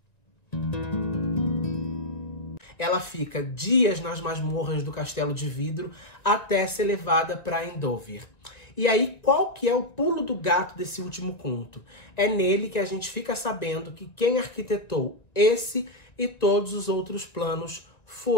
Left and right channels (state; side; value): late; right; 1.9 ms